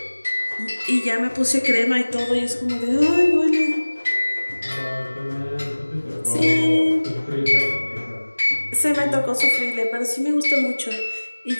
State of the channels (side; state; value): both; inverted; correlation -1.00